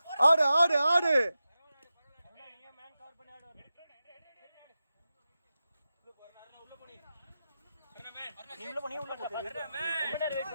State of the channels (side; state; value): both; inverted; correlation -0.92